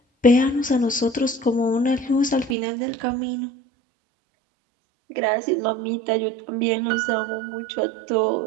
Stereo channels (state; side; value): drops out; left; at 2.6 s